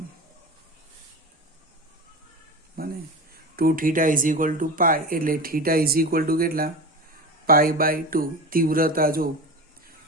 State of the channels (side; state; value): both; normal; correlation 0.28